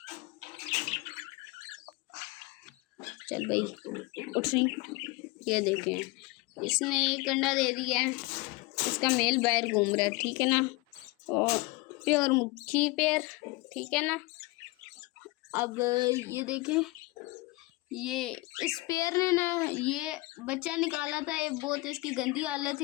चल भाई उठ रही। ये देखें इसने एक अंडा दे दिया है, इसका मेल बाहर घूम रहा है, ठीक है ना। और प्योर मुखी पेयर, ठीक है ना। अब ये देखें, ये इस पेयर ने ना ये बच्चा निकाला था। ये बहुत इसकी गंदी हालत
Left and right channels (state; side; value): quieter; right; 23.1 dB